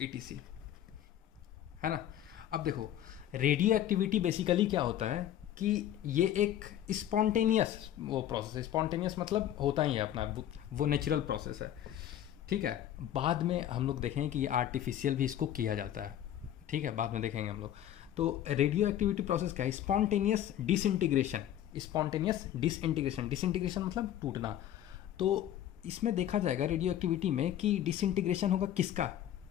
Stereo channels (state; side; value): quieter; right; 11.4 dB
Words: है ना। अब देखो, रेडियो एक्टिविटी बेसिकली क्या होता है कि ये एक स्पॉन्टेनियस वो प्रोसेस है। स्पॉन्टेनियस मतलब होता ही है अपना, वो नेचुरल प्रोसेस है, ठीक है। बाद में हम लोग देखेंगे कि ये आर्टिफिशियल भी इसको किया जाता है, ठीक है, बाद में देखेंगे हम लोग। तो रेडियो एक्टिविटी प्रोसेस क्या है? स्पॉन्टेनियस डिसइंटीग्रेशन मतलब टूटना। तो इसमें देखा जाएगा रेडियो एक्टिविटी में कि डिसइंटीग्रेशन होगा किसका?